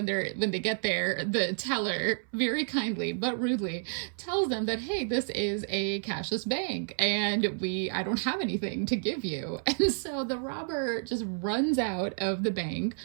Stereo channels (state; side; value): silent; left; 58 dB below the other